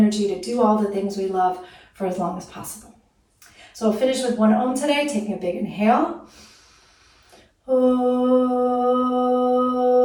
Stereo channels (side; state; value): both; identical; correlation 1.00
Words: to do all the things we love for as long as possible. So we'll finish with one Om today, taking a big inhale.